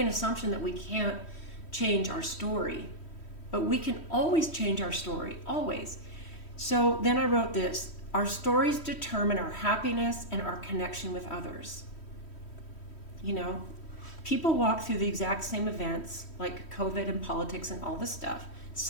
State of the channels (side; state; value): right; late; 3.1 ms